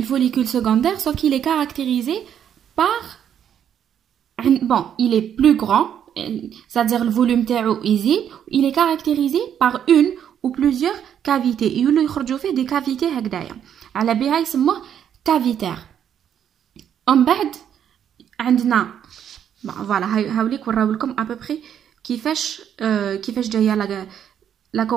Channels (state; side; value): quieter; left; 9.2 dB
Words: follicule secondaire sauf qu'il est caractérisé par bon il est plus grand c'est-à-dire le volume تاعو يزيد. Il est caractérisé par une ou plusieurs cavités يولوا يخرجوا فيه des cavités هكذايا على بها يسموه cavitaire. ومن بعد عندنا فوالا هاوليك وراو لكم à peu près كيفاش جايه لا